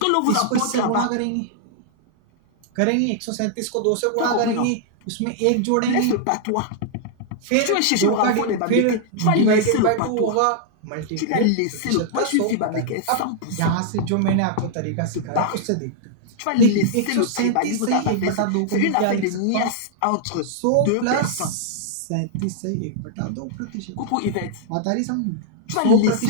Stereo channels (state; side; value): different; both; correlation -0.01